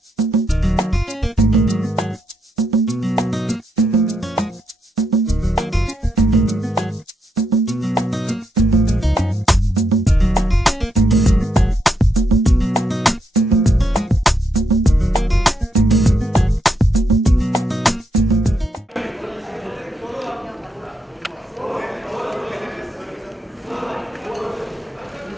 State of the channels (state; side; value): normal; both; correlation 0.80